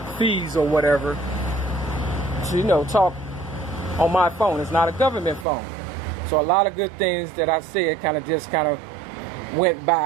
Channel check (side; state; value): left; drops out; at 5.5 s